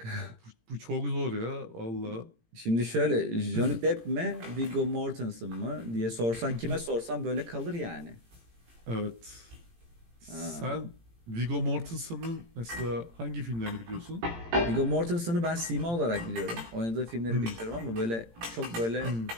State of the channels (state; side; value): late; left; 18 ms